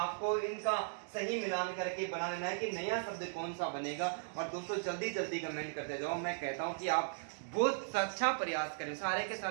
इनका सही मिलान करके बना लेना है कि नया शब्द कौन सा बनेगा। और दोस्तों जल्दी जल्दी कमेंट करते जाओ। मैं कहता हूं कि आप बहुत अच्छा प्रयास कर रहे हो, सारे के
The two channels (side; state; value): left; silent; digital silence